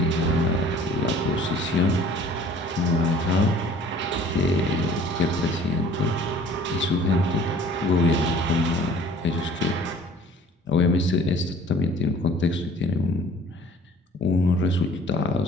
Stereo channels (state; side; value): normal; both; correlation 0.50